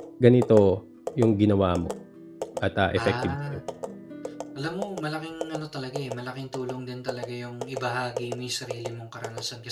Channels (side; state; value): both; identical; correlation 1.00